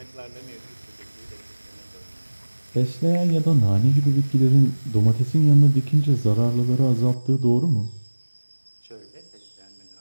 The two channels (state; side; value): inverted; both; correlation -1.00